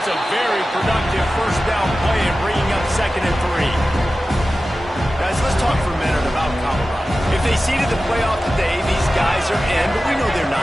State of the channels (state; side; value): normal; both; correlation 0.94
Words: a very productive first down play and bringing up 2nd and 3. Guys, let's talk for a minute about Colorado. If they seeded the playoff today, these guys are in, but we know they're